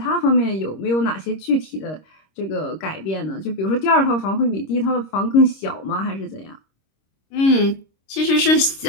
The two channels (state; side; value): late; right; 26 ms